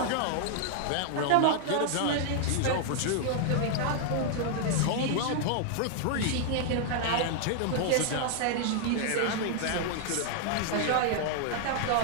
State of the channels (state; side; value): different; both; correlation 0.00